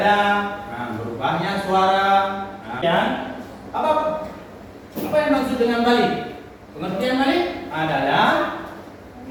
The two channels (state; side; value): identical; both; correlation 1.00